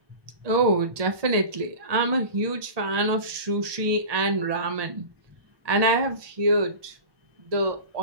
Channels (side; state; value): left; late; 1.2 ms